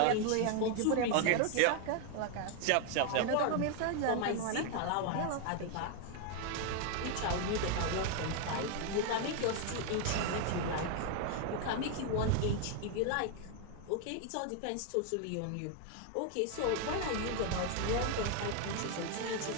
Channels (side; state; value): both; different; correlation 0.01